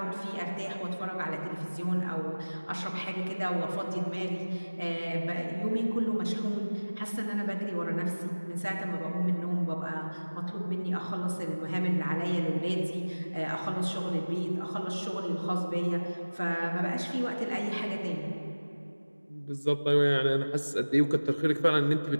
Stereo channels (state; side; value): inverted; both; correlation -1.00